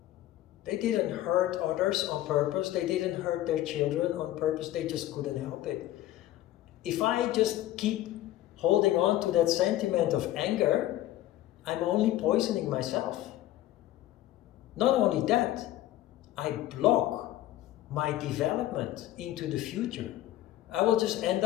They didn't hurt others on purpose. They didn't hurt their children on purpose. They just couldn't help it. If I just keep holding on to that sentiment of anger, I'm only poisoning myself. Not only that, I block my development into the future. I will just end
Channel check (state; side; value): quieter; right; 14.3 dB